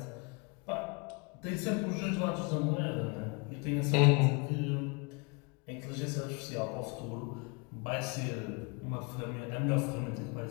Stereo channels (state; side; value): quieter; right; 31.3 dB